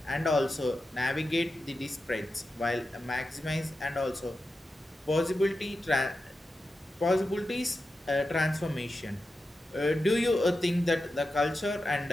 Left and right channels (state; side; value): normal; both; correlation 0.90